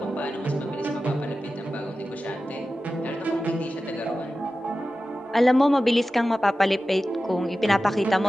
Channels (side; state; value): both; normal; correlation 0.94